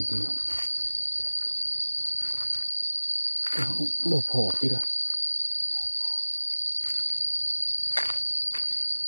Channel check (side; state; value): both; inverted; correlation -1.00